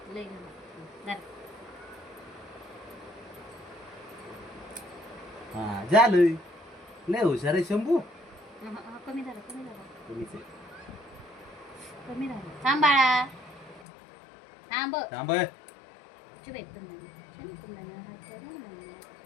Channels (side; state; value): right; drops out; at 13.9 s